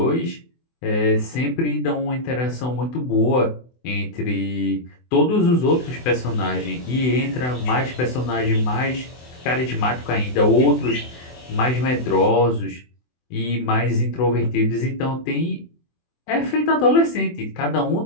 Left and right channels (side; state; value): right; late; 24 ms